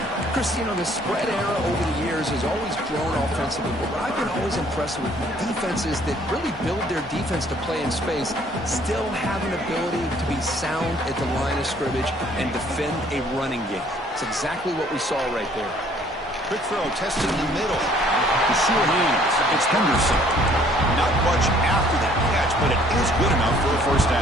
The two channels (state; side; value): normal; both; correlation 0.60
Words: Chris, you know, the spread era over the years has always grown offensively, but I've been always impressed with defenses that really build their defense to play in space, still have an ability to be sound at the line of scrimmage and defend a running game. It's exactly what we saw right there. Quick throw, testing the middle. The sure hands. It's Henderson. Not much after that catch, but it is good enough for a first